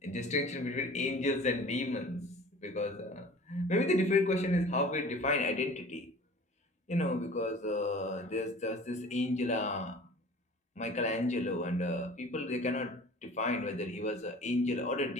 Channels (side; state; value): both; normal; correlation 0.43